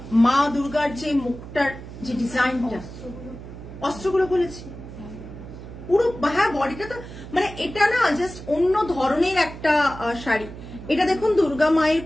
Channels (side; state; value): right; noise; hum, 13 dB below the sound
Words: মা দুর্গার যে মুখটার যে ডিজাইনটা, অস্ত্রগুলো বলেছি পুরো, হ্যাঁ বডিটা তো মানে এটা না জাস্ট অন্য ধরনের একটা শাড়ি। এটা দেখুন দুর্গা মায়ের